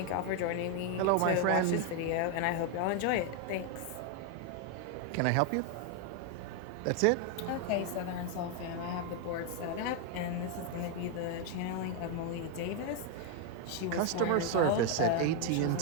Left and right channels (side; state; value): both; different; correlation 0.01